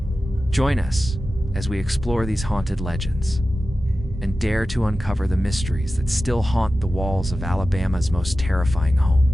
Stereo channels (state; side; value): normal; both; correlation 0.94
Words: Join us as we explore these haunted legends and dare to uncover the mysteries that still haunt the walls of Alabama's most terrifying